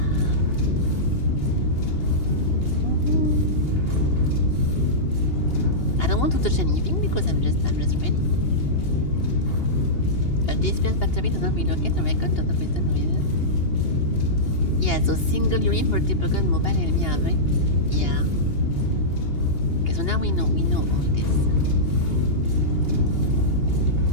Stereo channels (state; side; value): late; right; 2.8 ms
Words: I don't want to touch anything because I'm just ready. A disperse battery does not relocate, a recon does not return with it. Yeah, so single unit for typical mobile enemy array. Yeah. Okay, so now we know all this.